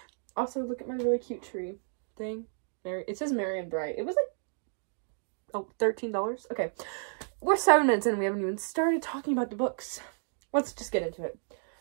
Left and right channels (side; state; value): left; silent; digital silence